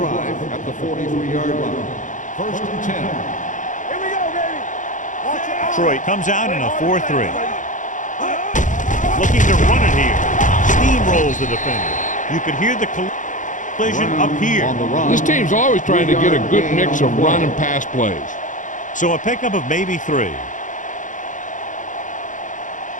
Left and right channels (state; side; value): late; right; 0.37 ms